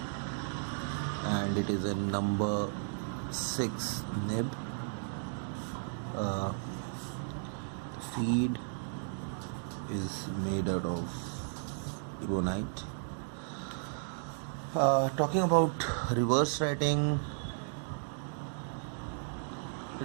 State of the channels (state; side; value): silent; left; digital silence